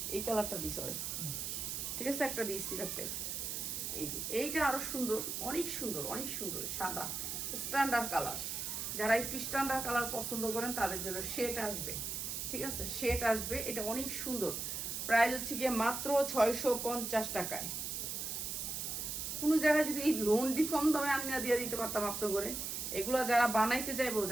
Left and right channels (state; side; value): noise; right; hiss, 3 dB below the sound